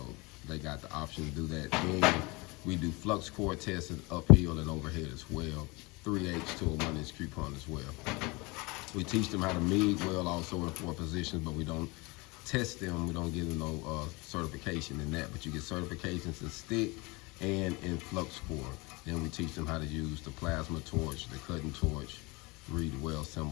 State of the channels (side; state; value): right; quieter; 25.7 dB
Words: they got the option to do that. And we do flux core tests uphill and overhead as well, 3/8 to a 1-inch coupon as well. We teach them how to MIG weld also in 4 positions, but we don't test them. We don't give them no certification in that, but you get certifications in stick and in flux core. Then we teach them how to use the plasma torch, the cutting torch, read the weld